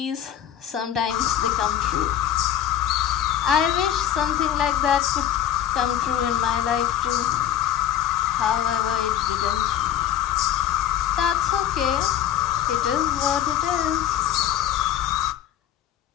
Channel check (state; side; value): quieter; right; 10.8 dB